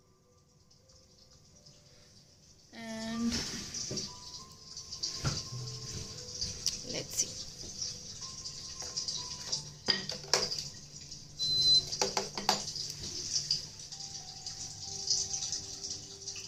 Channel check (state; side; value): identical; both; correlation 1.00